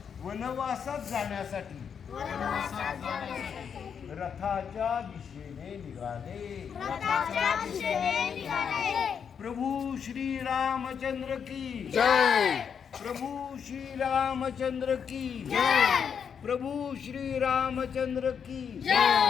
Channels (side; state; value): right; quieter; 7.2 dB